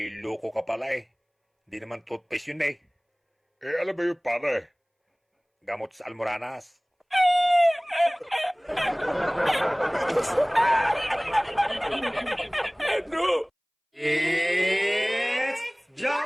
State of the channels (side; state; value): both; identical; correlation 1.00